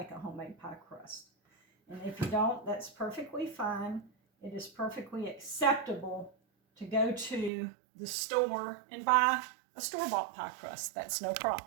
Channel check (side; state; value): left; drops out; at 7.5 s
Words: a homemade pie crust. And if you don't, that's perfectly fine. It is perfectly acceptable to go to the store and buy a store-bought pie crust. That's no